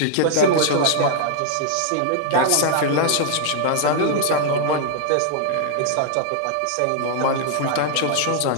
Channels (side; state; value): both; different; correlation 0.00